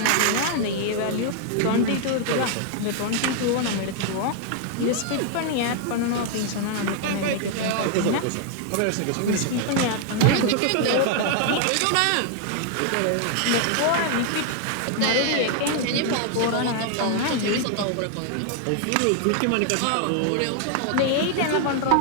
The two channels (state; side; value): different; both; correlation 0.00